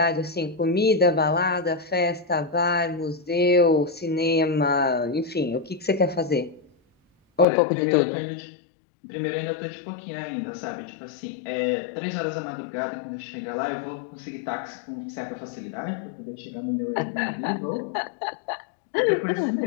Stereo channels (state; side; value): drops out; right; at 7.5 s